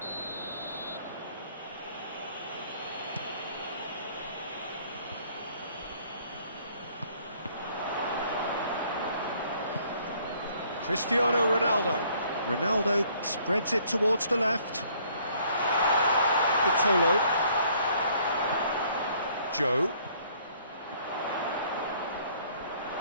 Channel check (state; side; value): inverted; both; correlation -0.61